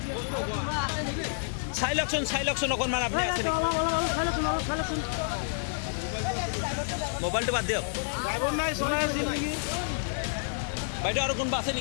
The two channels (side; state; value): right; silent; 55 dB below the other